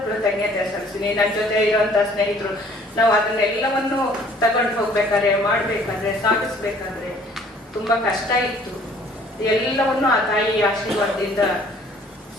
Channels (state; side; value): normal; both; correlation 0.56